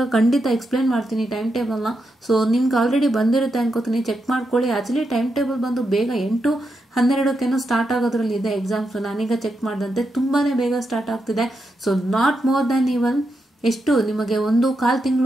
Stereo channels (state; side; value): normal; both; correlation 0.85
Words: ಖಂಡಿತ ಎಕ್ಸ್ಪ್ಲೇನ್ ಮಾಡ್ತೀನಿ ಟೈಮ್ ಟೇಬಲ್ನ. ಸೊ ನಿಮ್ಗೆ ಆಲ್ರೆಡಿ ಬಂದಿರುತ್ತೆ ಅನ್ಕೋತೀನಿ, ಚೆಕ್ ಮಾಡ್ಕೊಳ್ಳಿ. ಆ್ಯಕ್ಚುಲಿ ಟೈಮ್ ಟೇಬಲ್ ಬಂದು ಬೇಗ 8-12 ಸ್ಟಾರ್ಟ್ ಆಗೋದ್ರಲ್ಲಿ ಇದೆ ಎಕ್ಸಾಮ್ಸ್. ನಾನೀಗ ಚೆಕ್ ಮಾಡಿದಂತೆ ತುಂಬಾ ಬೇಗ ಸ್ಟಾರ್ಟ್ ಆಗ್ತಿದೆ. So not more than even ಎಷ್ಟು ನಿಮಗೆ 1.25